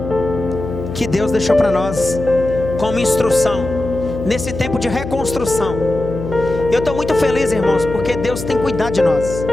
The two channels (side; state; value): left; noise; hum, 8 dB below the sound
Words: que Deus deixou para nós como instrução nesse tempo de reconstrução. Eu estou muito feliz, irmãos, porque Deus tem cuidado de nós.